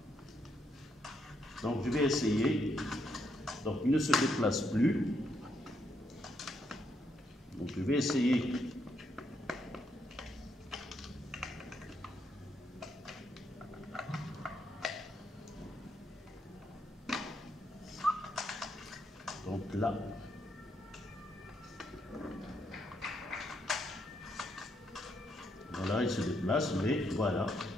Donc, je vais essayer. Donc, il ne se déplace plus. Donc, je vais essayer. Donc, là. Voilà, il se déplace, mais voilà.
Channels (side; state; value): both; normal; correlation 0.77